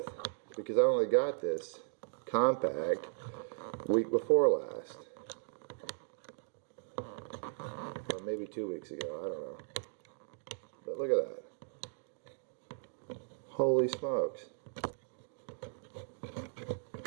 because I only got this compact week before last. Or maybe 2 weeks ago, I don't know. But look at that. Holy smokes.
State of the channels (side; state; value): left; silent; digital silence